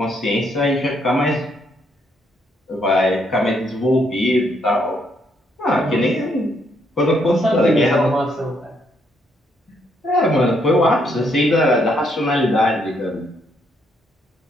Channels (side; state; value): both; normal; correlation 0.73